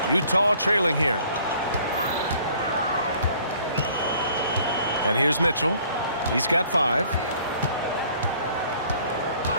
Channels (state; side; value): inverted; both; correlation -0.57